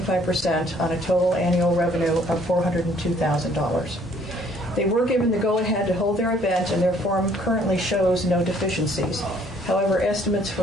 on a total annual revenue of $402,000. They were given the go-ahead to hold their event, and their form currently shows no deficiencies. However, estimates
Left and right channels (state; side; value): normal; both; correlation 0.61